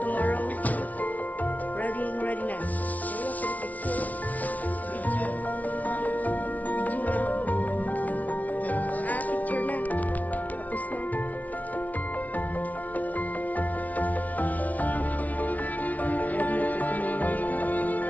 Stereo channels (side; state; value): right; late; 0.072 ms